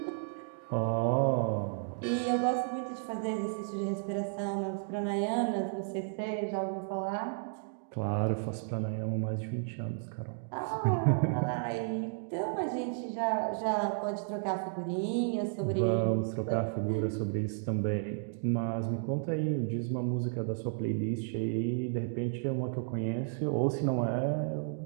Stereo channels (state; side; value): silent; left; digital silence